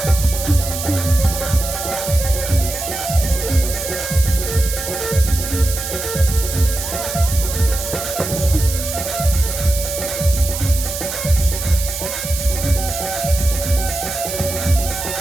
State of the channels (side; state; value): right; noise; hiss, 6 dB below the sound